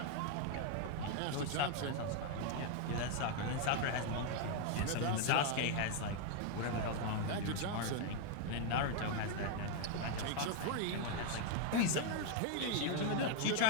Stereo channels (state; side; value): different; both; correlation 0.00